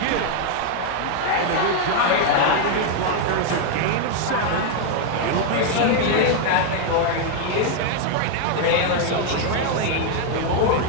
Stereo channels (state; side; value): different; both; correlation 0.00